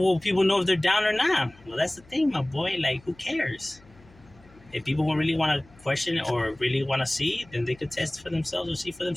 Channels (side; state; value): left; noise; hum, 26 dB below the sound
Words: people know if they're down or not? Well, that's the thing, my boy. Like, who cares? If people really want to question it or really want to see, then they could test for themselves or see for